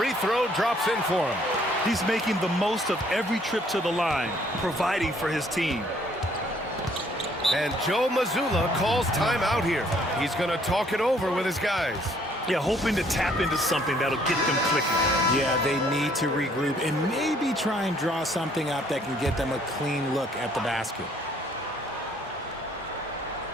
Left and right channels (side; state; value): both; normal; correlation 0.63